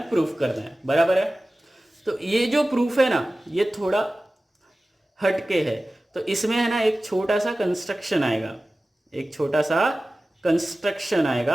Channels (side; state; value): both; normal; correlation 0.96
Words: प्रूफ करना है, बराबर है। तो ये जो प्रूफ है ना ये थोड़ा हटके है, तो इसमें है ना एक छोटा सा कंस्ट्रक्शन आएगा, एक छोटा सा कंस्ट्रक्शन